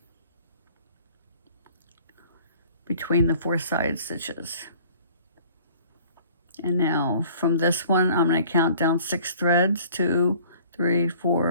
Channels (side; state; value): both; inverted; correlation -0.52